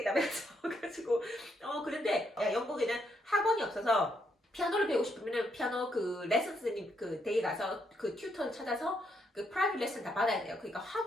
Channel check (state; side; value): normal; both; correlation 0.76